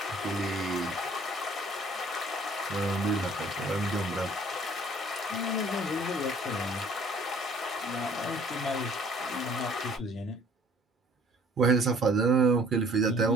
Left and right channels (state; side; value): normal; both; correlation 0.55